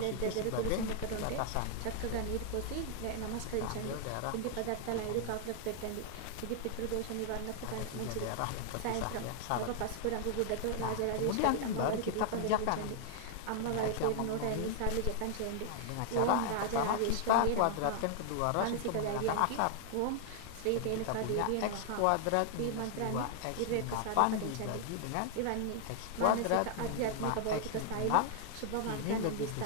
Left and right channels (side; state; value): both; different; correlation 0.00